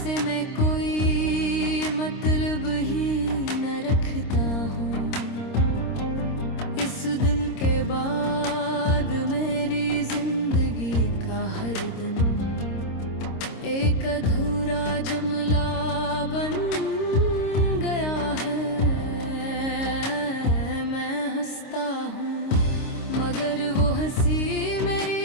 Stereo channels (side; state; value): right; late; 26 ms